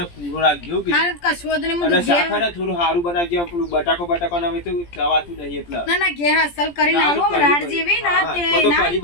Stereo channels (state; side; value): late; right; 17 ms